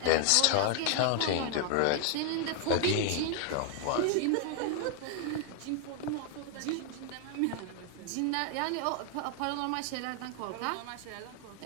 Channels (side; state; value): both; different; correlation 0.00